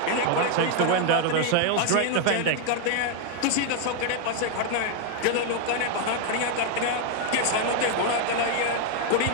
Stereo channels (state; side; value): different; both; correlation 0.00